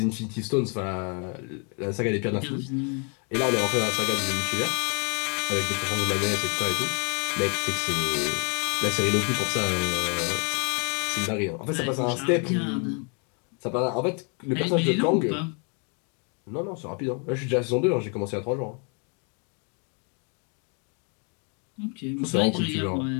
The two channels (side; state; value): right; quieter; 38.0 dB